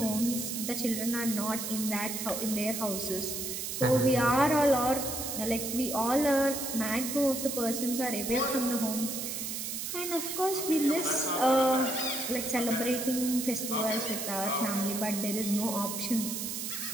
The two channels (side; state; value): right; noise; hiss, 4 dB below the sound